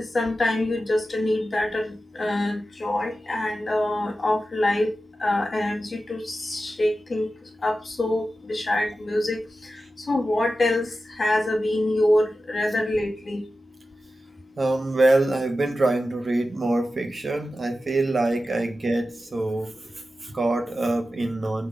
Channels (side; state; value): both; normal; correlation 0.93